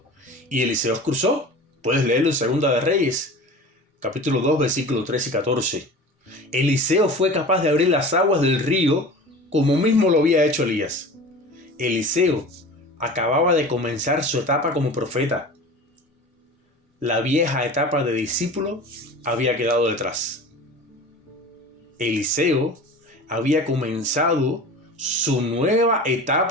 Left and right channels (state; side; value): normal; both; correlation 0.37